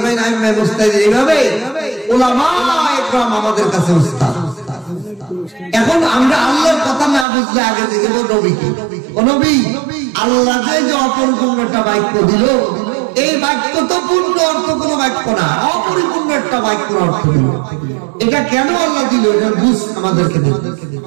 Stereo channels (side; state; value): left; drops out; at 7.2 s